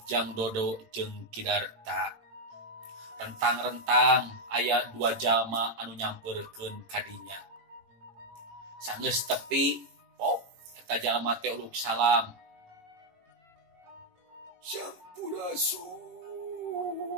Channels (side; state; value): left; late; 18 ms